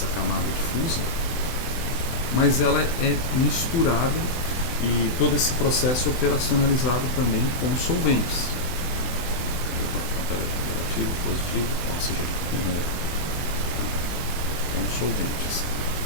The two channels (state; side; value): late; right; 24 ms